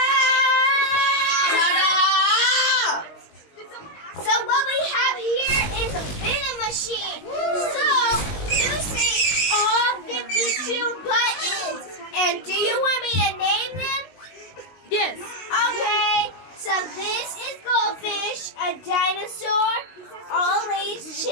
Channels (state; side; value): late; right; 19 ms